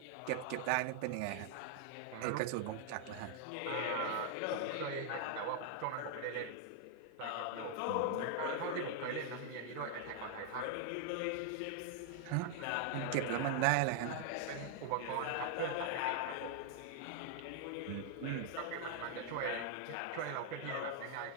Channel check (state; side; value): different; both; correlation 0.00